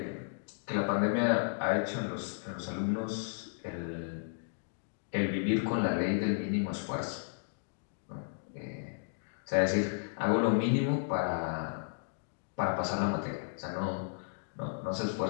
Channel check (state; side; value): silent; right; digital silence